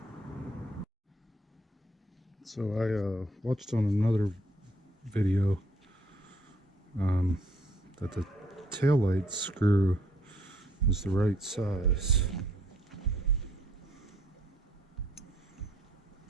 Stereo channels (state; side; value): normal; both; correlation 0.65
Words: So I watched on another video that the taillight screw is the right size.